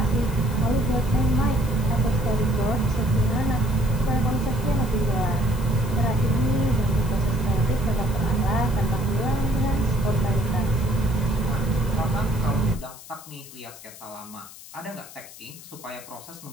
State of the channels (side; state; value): left; noise; hiss, 17 dB below the sound